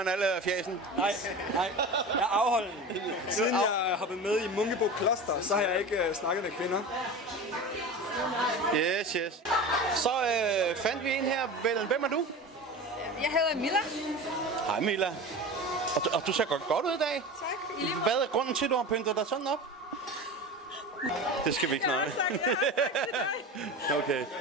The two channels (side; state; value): both; normal; correlation 0.30